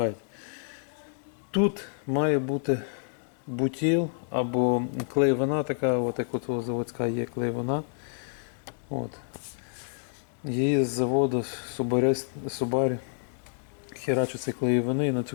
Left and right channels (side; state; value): right; silent; digital silence